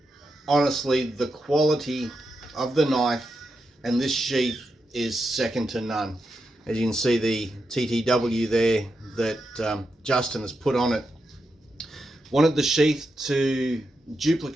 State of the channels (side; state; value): both; normal; correlation 0.86